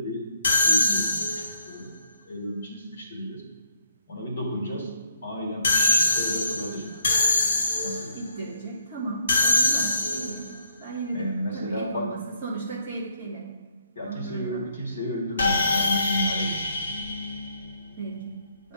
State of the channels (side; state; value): both; inverted; correlation -0.72